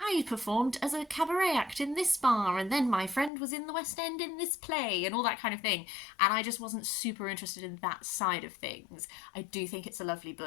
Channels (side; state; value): right; drops out; at 3.3 s